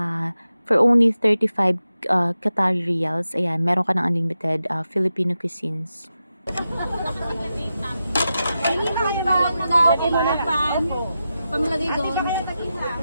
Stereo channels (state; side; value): inverted; both; correlation -0.90